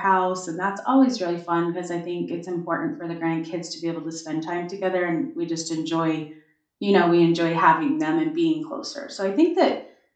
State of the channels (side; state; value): both; identical; correlation 1.00